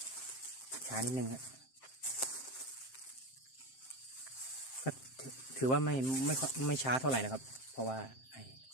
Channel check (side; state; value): right; late; 7.6 ms